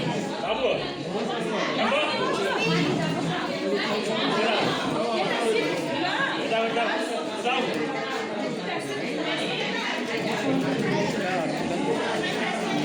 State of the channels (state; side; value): identical; both; correlation 1.00